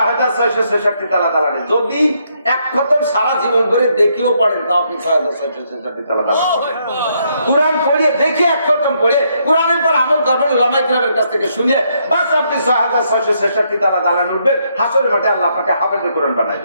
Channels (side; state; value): both; inverted; correlation -0.74